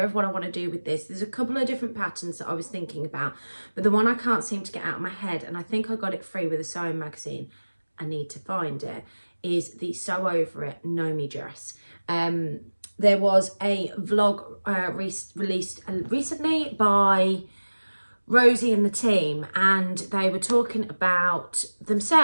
of what I want to do with this. There's a couple of different patterns that I was thinking about, but the one I can't seem to get out of my head, and I think I got it free with a sewing magazine, I need to find it, is the Sew Over It Nomi dress. There was a vlog released recently by Rosie and the team, and they were talking about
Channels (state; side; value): inverted; both; correlation -1.00